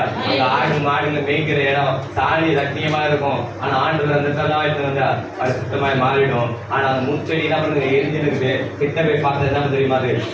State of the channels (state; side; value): identical; both; correlation 1.00